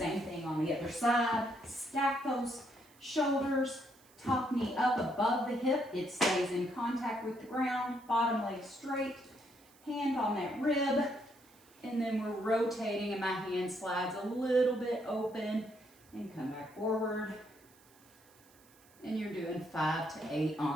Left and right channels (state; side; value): noise; right; hiss, 28 dB below the sound